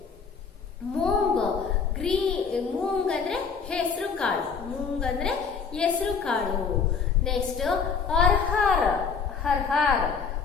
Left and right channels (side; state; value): right; quieter; 5.7 dB